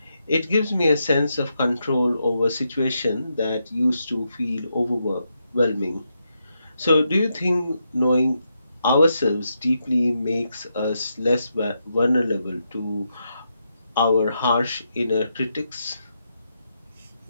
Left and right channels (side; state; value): both; inverted; correlation -0.83